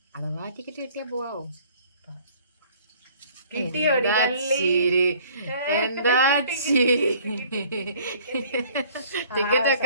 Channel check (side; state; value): both; inverted; correlation -0.55